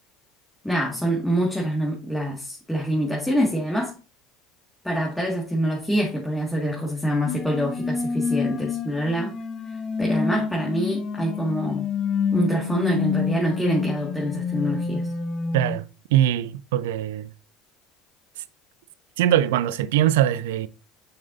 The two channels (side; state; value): both; normal; correlation 0.52